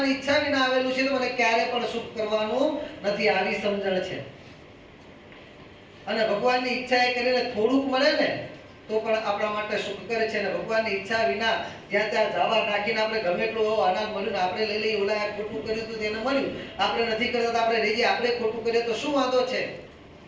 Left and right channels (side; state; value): both; identical; correlation 1.00